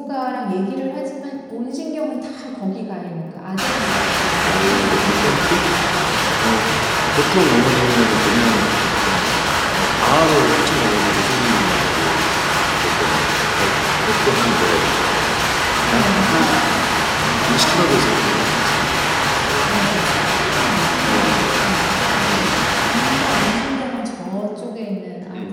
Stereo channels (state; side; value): identical; both; correlation 1.00